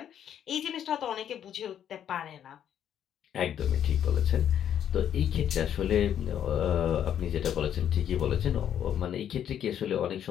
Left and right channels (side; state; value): right; quieter; 9.7 dB